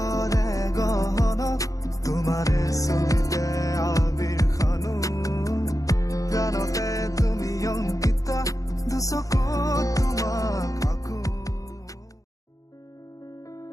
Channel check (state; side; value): late; right; 0.16 ms